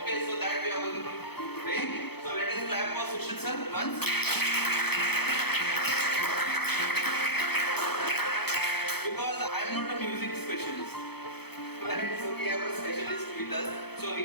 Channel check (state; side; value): late; right; 0.97 ms